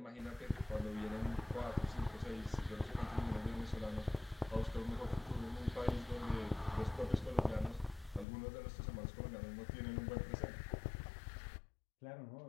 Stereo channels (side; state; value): right; drops out; at 8.2 s